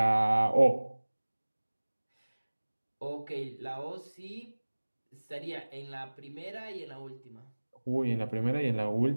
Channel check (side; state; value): both; inverted; correlation -1.00